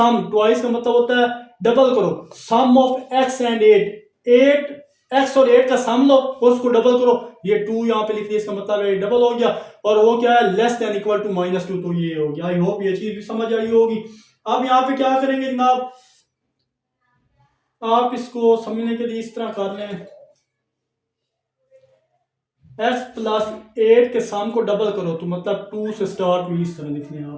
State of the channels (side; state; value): both; identical; correlation 1.00